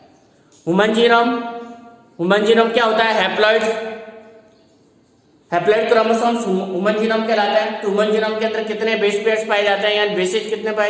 ह्यूमन जीनोम क्या होता है? हैप्लॉइड क्रोमोसोम्स ह्यूमन जीनोम कहलाता है। तो ह्यूमन जीनोम के अंदर कितने बेस पेयर्स पाए जाते हैं, यानी बेसेज कितने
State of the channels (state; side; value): identical; both; correlation 1.00